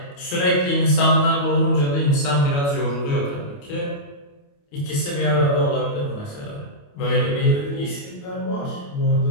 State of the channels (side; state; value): right; late; 28 ms